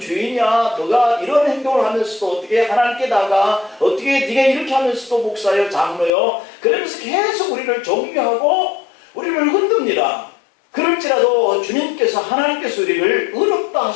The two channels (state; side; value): drops out; right; at 6.1 s